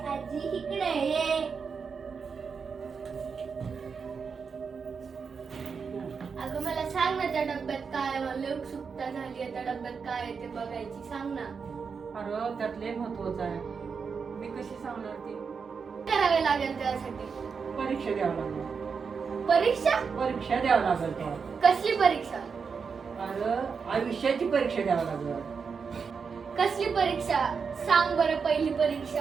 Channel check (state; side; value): quieter; left; 5.7 dB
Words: आजी इकडे ये. अगं मला सांग ना त्या डब्यात काय आहे? मला उत्सुकता झाली आहे त्या डब्यात काय आहे ते बघायची. सांग ना. अरे त्यात लय महत्वाचं आहे. मी कशी सांगणार ती? करावे लागेल त्यासाठी? परीक्षा द्यावं लागेल. परीक्षा? परीक्षा द्यावं लागेल तेव्हा. कसली परीक्षा? अरे आयुष्याची परीक्षा द्यावं लागेल. कसली परीक्षा? सांग बरं पहिली